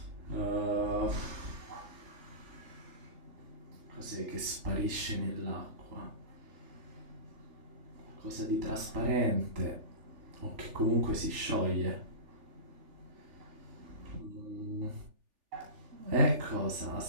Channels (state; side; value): late; left; 3.4 ms